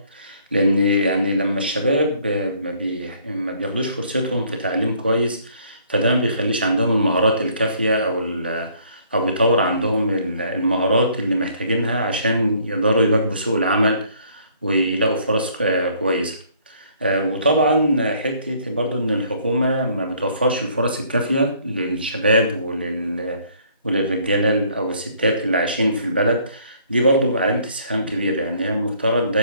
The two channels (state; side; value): inverted; both; correlation -0.62